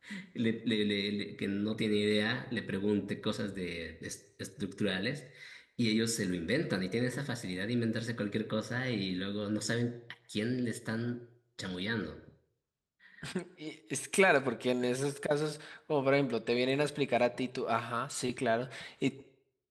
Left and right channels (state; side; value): identical; both; correlation 1.00